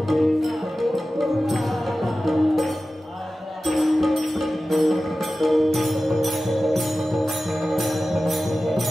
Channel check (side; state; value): both; normal; correlation 0.95